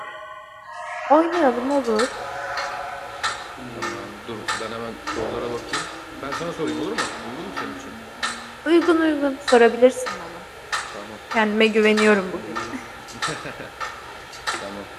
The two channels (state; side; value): identical; both; correlation 1.00